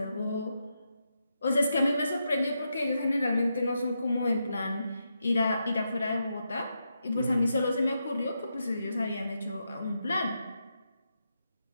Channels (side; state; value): both; inverted; correlation -0.84